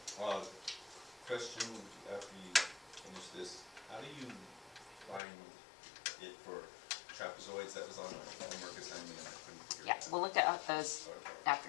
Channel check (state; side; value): drops out; right; at 5.2 s